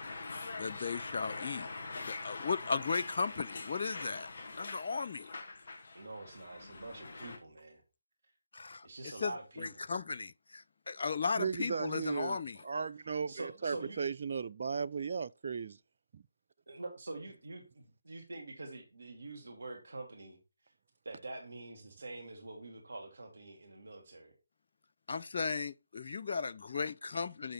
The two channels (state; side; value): inverted; both; correlation -0.82